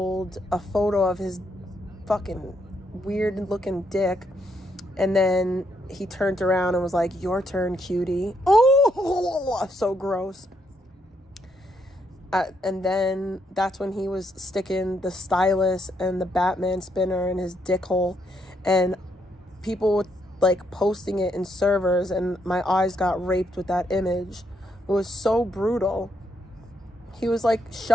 a photo of his fucking weird looking dick, and then he turned around and was like, "Your turn, cutie." Oh, so gross. And then that's when he was sticking the stylus and the Batman spinner in his dick hole. And people like posting it in servers, and my eyes got raped with that image. It was so brutal. He was like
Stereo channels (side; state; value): both; normal; correlation 0.75